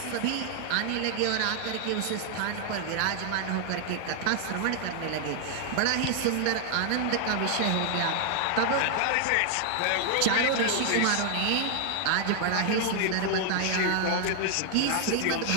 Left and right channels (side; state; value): both; different; correlation 0.00